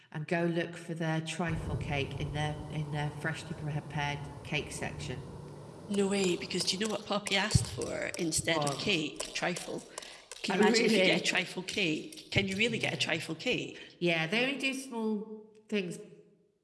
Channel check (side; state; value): both; identical; correlation 1.00